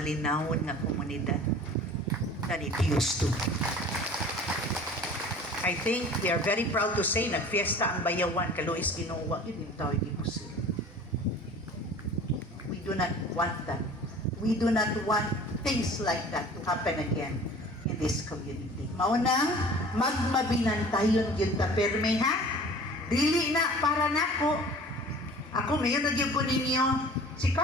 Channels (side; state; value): both; normal; correlation 0.44